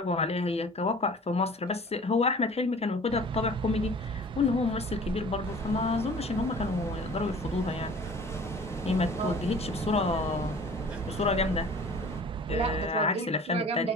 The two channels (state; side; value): normal; both; correlation 0.46